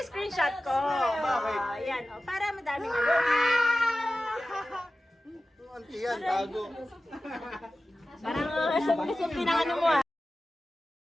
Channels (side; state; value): both; normal; correlation 0.95